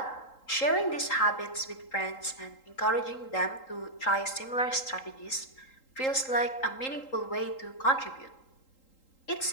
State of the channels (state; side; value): late; right; 3.8 ms